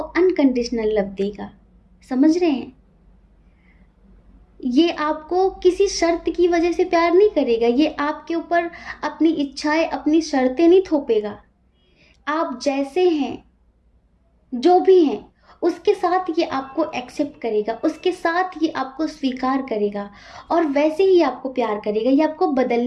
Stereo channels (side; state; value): both; identical; correlation 1.00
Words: लव देगा, समझ रहे हैं? ये आपको किसी शर्त की वजह से प्यार नहीं करेगा, ये आपके ऊपर अपनी इच्छाएं, अपनी शर्तें नहीं थोपेगा। आप जैसे हैं, जो भी हैं, उसके साथ ये आपको एक्सेप्ट करेगा, उसके साथ ये आपको स्वीकार करेगा और वैसे ही आपको प्यार करेगा। ये आपको